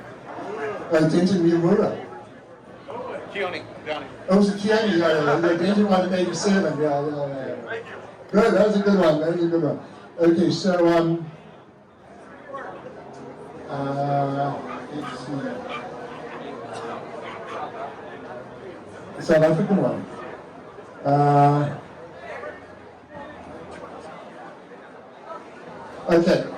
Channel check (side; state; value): both; identical; correlation 1.00